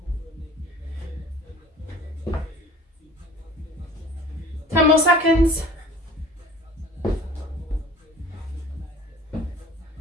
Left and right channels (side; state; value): both; normal; correlation 0.46